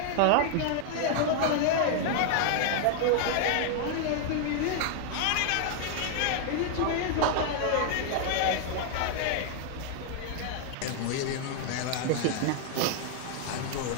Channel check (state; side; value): different; both; correlation 0.00